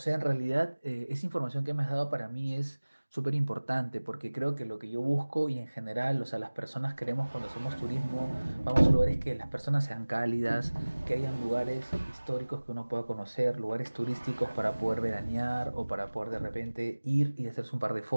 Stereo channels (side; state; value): both; inverted; correlation -1.00